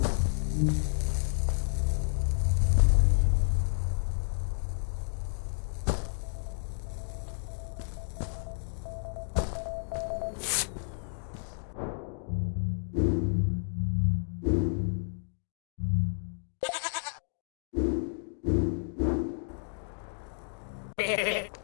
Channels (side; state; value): right; silent; digital silence